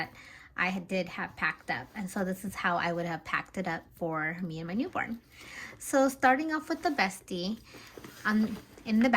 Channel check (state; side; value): identical; both; correlation 1.00